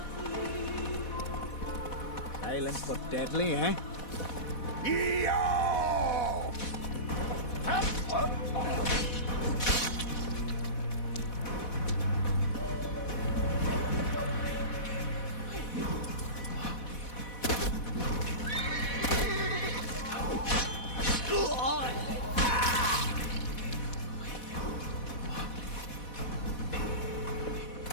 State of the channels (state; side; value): late; right; 4.1 ms